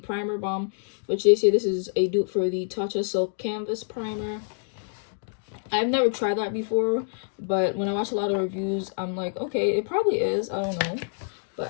Primer Balm, which they say this is a dupe for the Tatcha Silk Canvas Primer. I've never tried that before, but when I watch a lot of reviews, I'm like, okay, it probably is. I don't know.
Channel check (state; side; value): silent; right; 61 dB below the other